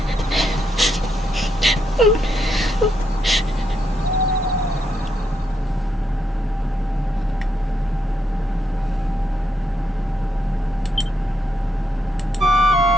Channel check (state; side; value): normal; both; correlation 0.80